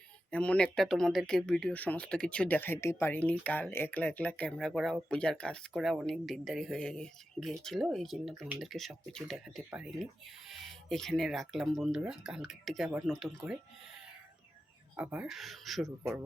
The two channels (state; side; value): normal; both; correlation 0.91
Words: এমন একটা তোমাদেরকে ভিডিও সমস্ত কিছু দেখাইতে পারিনি। কাল একলা একলা ক্যামেরা করা, পূজার কাজ করা অনেক দেরি হয়ে গিয়েছিল, এই জন্য তোমাদেরকে সব কিছু দেখাতে পারিনি। এখানে রাখলাম বন্ধুরা, কালকের থেকে আবার নতুন করে আবার শুরু করব।